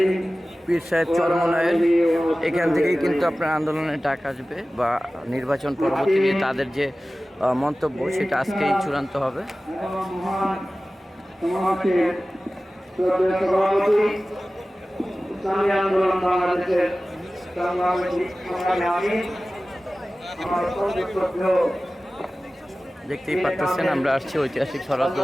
পীর সাহেব চরমনায়ের এখান থেকেই কিন্তু আপনার আন্দোলনের ডাক আসবে বা নির্বাচন পরবর্তীতে তাদের যে মন্তব্য সেটা আজকেই চূড়ান্ত হবে। ইসলামী আন্দোলন বাংলাদেশের দেখতেই পাচ্ছেন আমরা আসছি ঐতিহাসিক শরৎ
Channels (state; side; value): normal; both; correlation 0.96